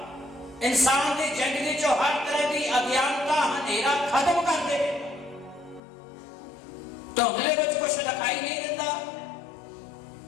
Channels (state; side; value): drops out; right; at 5.8 s